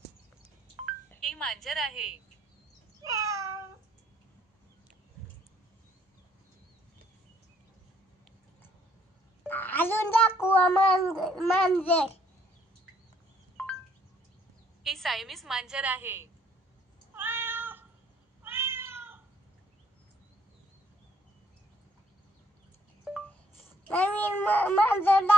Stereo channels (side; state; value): both; normal; correlation 0.66